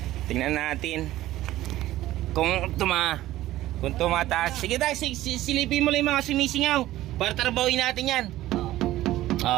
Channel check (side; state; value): left; quieter; 15.2 dB